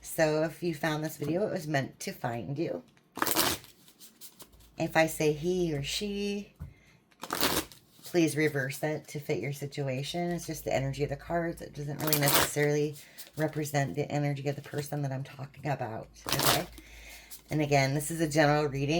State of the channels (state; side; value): identical; both; correlation 1.00